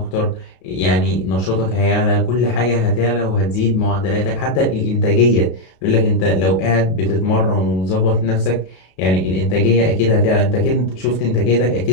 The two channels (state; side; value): late; right; 32 ms